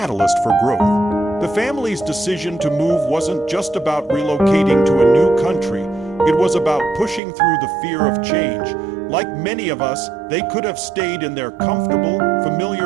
for growth. The family's decision to move wasn't just about relocating to a new country. It was about pushing through the fear of change. Like many of us, they could have stayed in their comfortable,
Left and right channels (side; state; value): left; drops out; at 7.2 s